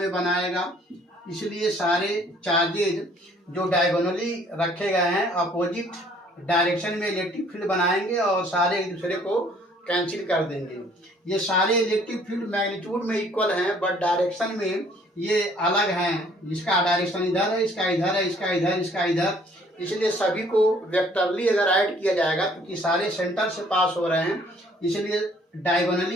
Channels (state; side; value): normal; both; correlation 0.59